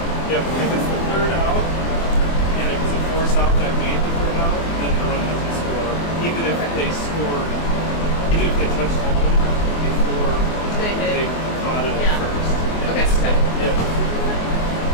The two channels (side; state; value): right; late; 24 ms